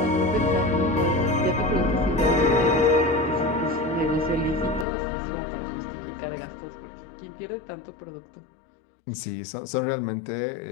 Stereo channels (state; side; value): drops out; right; at 4.9 s